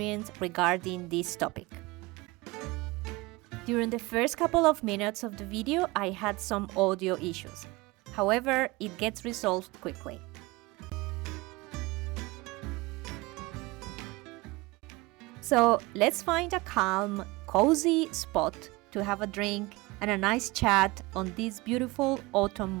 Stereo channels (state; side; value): quieter; left; 22.8 dB